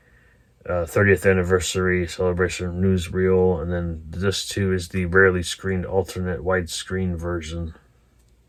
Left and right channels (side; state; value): both; identical; correlation 1.00